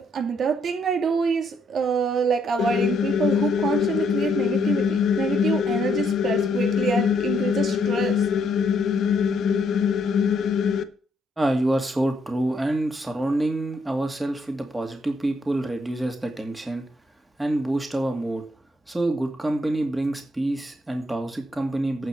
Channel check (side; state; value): both; normal; correlation 0.73